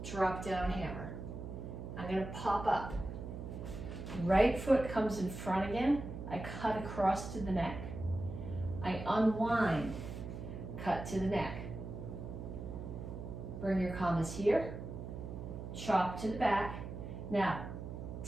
drop down hammer. I'm gonna pop up. Right foot comes in front again, I cut across to the neck. I unwind, cut to the neck. Bring your commas here, chop to the back. Now,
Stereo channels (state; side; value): noise; right; hum, 8 dB below the sound